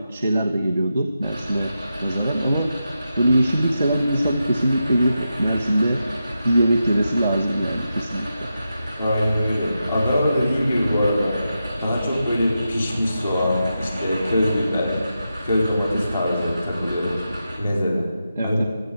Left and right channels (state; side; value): inverted; both; correlation -0.88